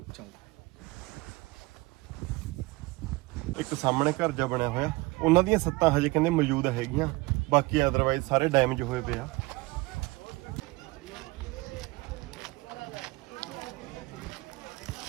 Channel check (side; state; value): left; quieter; 22.8 dB